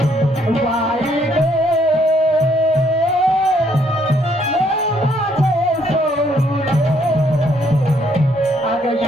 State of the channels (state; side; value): normal; both; correlation 0.68